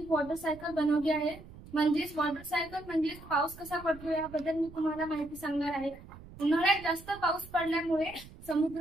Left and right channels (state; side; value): noise; right; rumble, 18 dB below the sound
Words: वॉटरसायकल बनवली आहे। म्हणजेच वॉटरसायकल म्हणजे पाऊस कसा पडतो याबद्दल मी तुम्हाला माहिती सांगणार आहे। उन्हाळ्यात जास्त पाऊस पडल्यामुळे